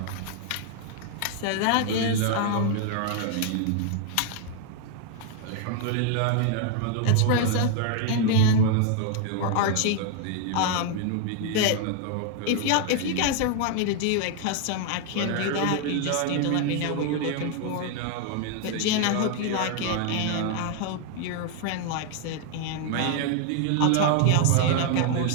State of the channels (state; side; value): different; both; correlation 0.00